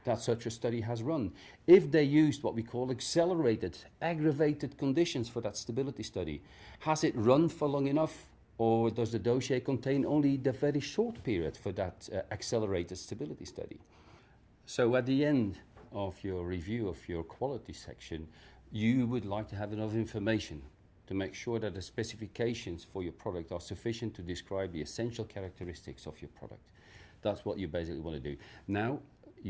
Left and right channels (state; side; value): identical; both; correlation 1.00